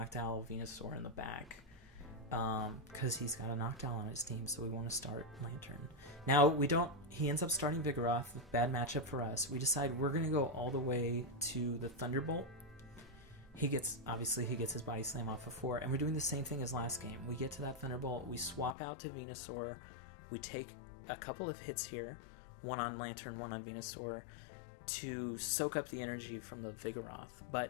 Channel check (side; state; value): right; drops out; at 18.8 s